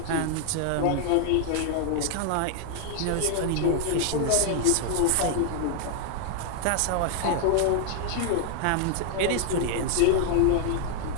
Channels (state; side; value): different; both; correlation 0.00